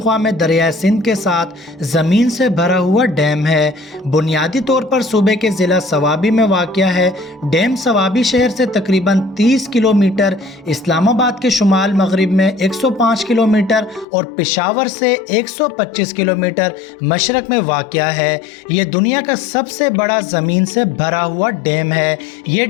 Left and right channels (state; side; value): drops out; right; at 14.1 s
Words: में दरिया सिंध के साथ ज़मीन से भरा हुआ डैम है। बुनियादी तौर पर सूबे के ज़िला सवाबी में वाक़या है। डैम सवाबी शहर से तकरीबन 30 किलोमीटर, इस्लामाबाद के शुमाल मगरिब में 105 किलोमीटर और पेशावर से 125 किलोमीटर मशरक में वाक़या है। ये दुनिया का सबसे बड़ा ज़मीन से भरा हुआ डैम है। ये